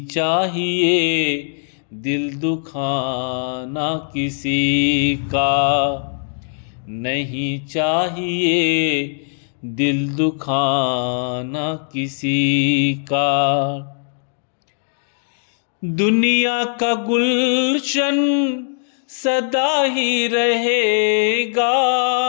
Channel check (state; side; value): silent; right; digital silence